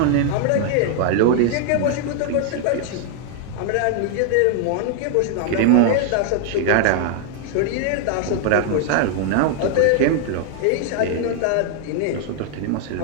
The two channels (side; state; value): both; different; correlation 0.00